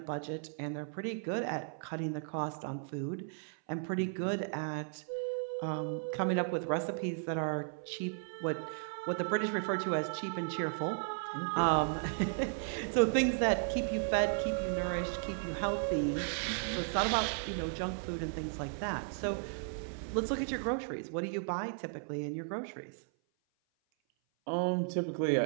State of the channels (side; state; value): left; silent; 54 dB below the other